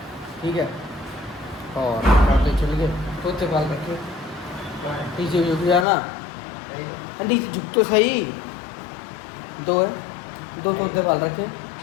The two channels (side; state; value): right; drops out; at 5.9 s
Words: ठीक है, और आते चल गए तोते पाल रखे नीचे झुक जाना, अंडी झुक तो सही, 2 है, 2 तोते पाल रखे।